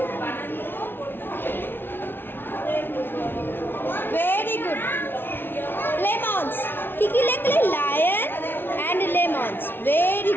Very good. লেমনস। কি কি লিখলে? Lion and lemons. Very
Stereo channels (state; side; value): late; right; 0.10 ms